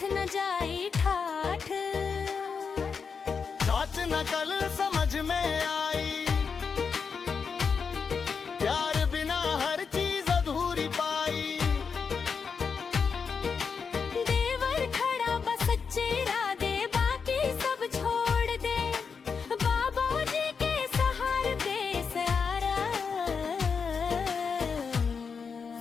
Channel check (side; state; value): right; quieter; 5.8 dB